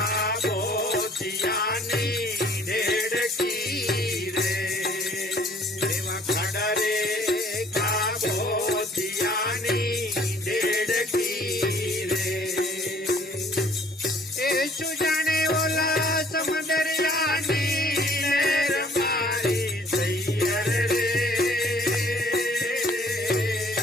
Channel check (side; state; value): both; normal; correlation 0.58